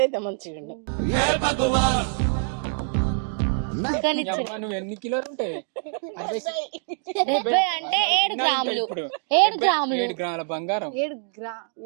అయితే మంచిగా ఉండు. కానీ అమ్మ నువ్వు ఎన్ని కిలోలు ఉంటాయి? 70 ఉంటావా? అవి తిన్నాడు ఇంకా ఇప్పుడు 7 గ్రాముల బంగారం.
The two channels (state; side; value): silent; left; digital silence